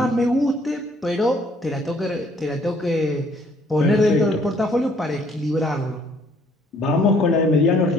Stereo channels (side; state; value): both; normal; correlation 0.62